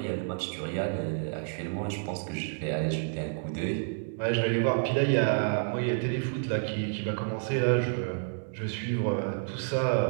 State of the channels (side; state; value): left; silent; digital silence